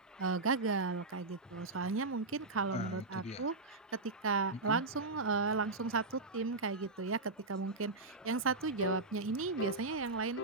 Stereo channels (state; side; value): quieter; left; 3.4 dB